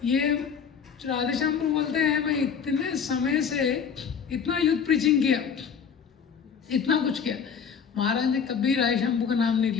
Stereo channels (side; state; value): right; quieter; 6.8 dB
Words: ये राधेश्याम प्रभु बोलते हैं मैं इतने समय से इतना यूथ प्रीचिंग किया, इतना कुछ किया, महाराज ने कभी राय शंभू का नाम नहीं